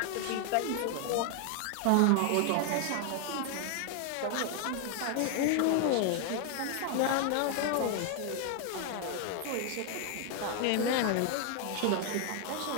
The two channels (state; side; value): different; both; correlation 0.00